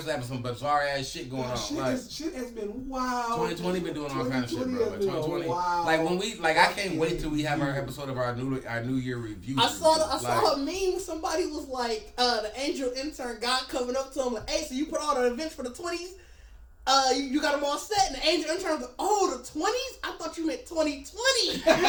having some bizarre ass shit going on. Shit, Like shit has been wild. 2020 been doing all kind of shit, bro. Like 2020, wow. like when we I can't wait till we have our episode of our New Year review. I saw a meme. Somebody was like, the angel intern guy coming up to him like, "Hey, so you put all the events for the 20s? You got them all set?" And the angel intern was like, "Oh, the 20s? I thought you meant 2020."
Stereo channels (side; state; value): both; identical; correlation 1.00